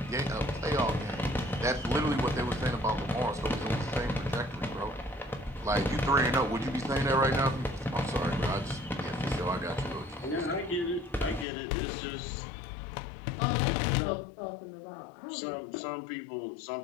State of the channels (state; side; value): drops out; right; at 11.5 s